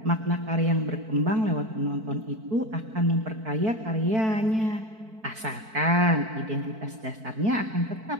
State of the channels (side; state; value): left; late; 4.5 ms